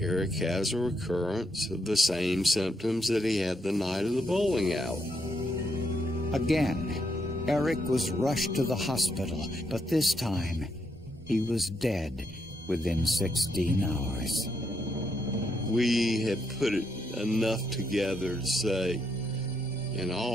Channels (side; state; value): both; normal; correlation 0.78